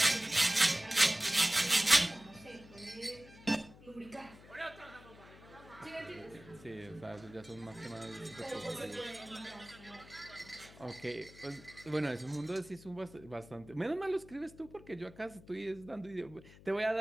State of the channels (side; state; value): left; noise; hum, 20 dB below the sound